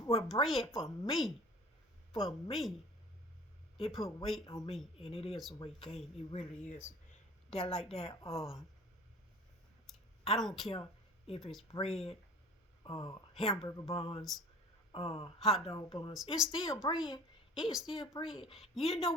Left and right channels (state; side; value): normal; both; correlation 0.43